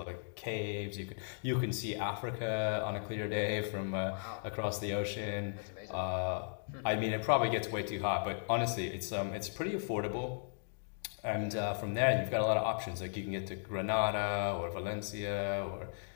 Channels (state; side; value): silent; right; digital silence